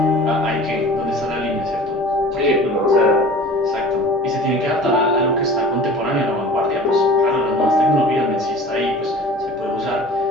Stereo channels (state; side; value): normal; both; correlation 0.42